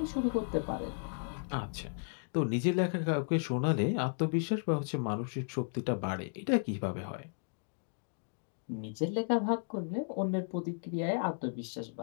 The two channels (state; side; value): silent; right; digital silence